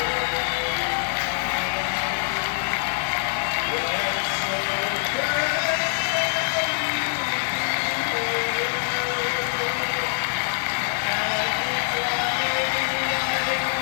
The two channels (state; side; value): silent; right; 58 dB below the other